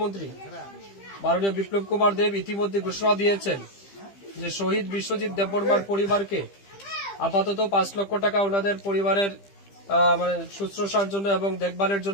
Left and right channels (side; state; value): right; late; 15 ms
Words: মাননীয় বিপ্লব কুমার দেব ইতিমধ্যে ঘোষণা দিয়েছেন যে শহীদ বিশ্বজিৎ দেববর্মার পরিবারকে আপাতত 5 লক্ষ টাকা ওনাদের পরিবারের শুশ্রূষার জন্য এবং দেখভালের